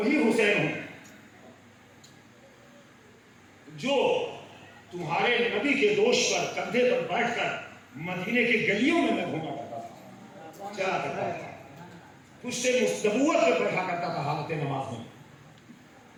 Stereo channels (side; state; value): both; identical; correlation 1.00